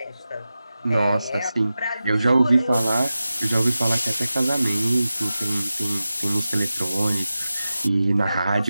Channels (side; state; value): both; inverted; correlation -0.93